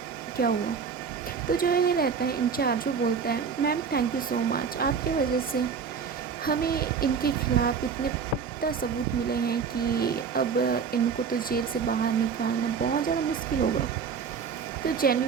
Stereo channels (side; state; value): left; quieter; 6.2 dB